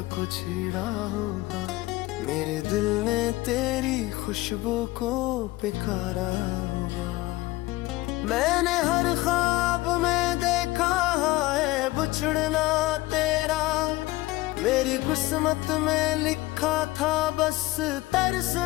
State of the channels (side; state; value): right; quieter; 19.3 dB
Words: को छेड़ा होगा, मेरे दिल ने तेरी खुशबू को पुकारा होगा। मैंने हर ख्वाब में देखा है बिछड़ना तेरा, मेरी किस्मत में लिखा था बस